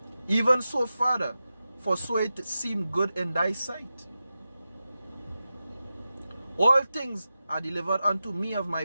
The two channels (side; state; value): both; inverted; correlation -0.92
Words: Even so, Father, for so it seemed good in thy sight. All things are delivered unto me of